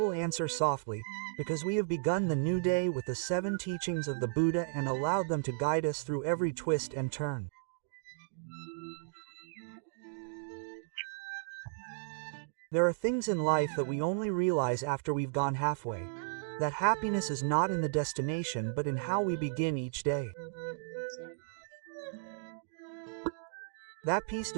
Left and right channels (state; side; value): silent; left; digital silence